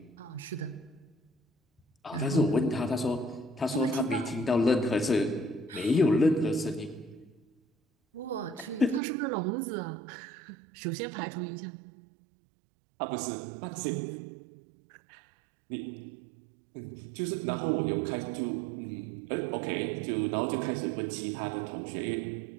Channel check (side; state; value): left; drops out; at 9.0 s